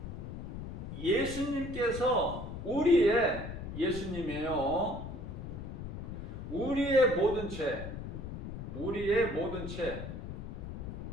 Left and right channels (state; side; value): noise; left; rumble, 7 dB below the sound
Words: 예수님께서 예수님이에요. 우리의 모든 죄